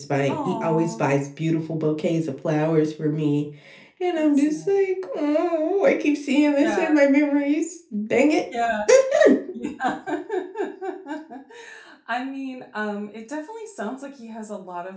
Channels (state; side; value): identical; both; correlation 1.00